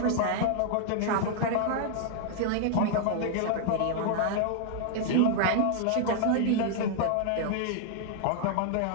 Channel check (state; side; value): different; both; correlation -0.01